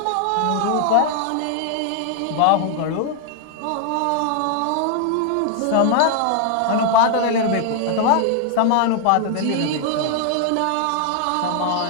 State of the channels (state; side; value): different; both; correlation 0.00